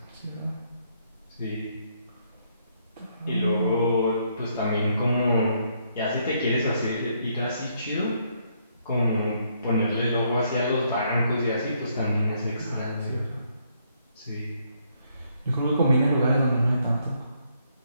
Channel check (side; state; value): both; inverted; correlation -0.72